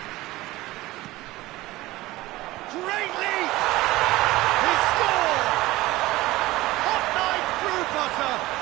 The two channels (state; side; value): quieter; left; 18.4 dB